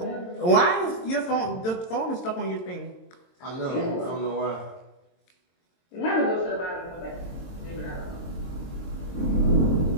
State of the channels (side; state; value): right; late; 22 ms